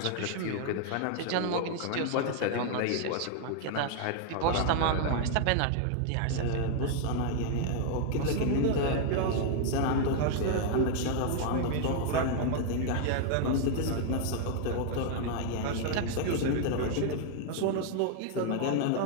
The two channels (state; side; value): different; both; correlation 0.00